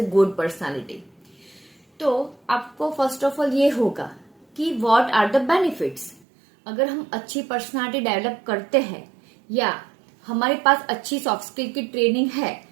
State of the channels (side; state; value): left; drops out; at 6.2 s